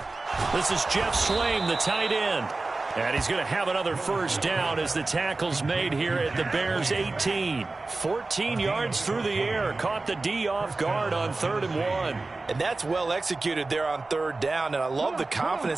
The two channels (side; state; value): left; quieter; 3.4 dB